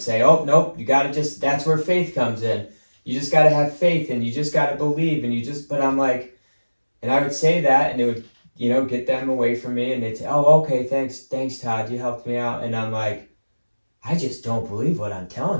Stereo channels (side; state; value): both; inverted; correlation -1.00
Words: oh, nope, you got to that's where faith comes in. You just got to have faith, and you just got to believe, but I'm like, and I would say that, and it would, get them away from me, and they'd say, oh, okay, thanks, Todd, you helped me out. And I'm like, I just don't believe what I'm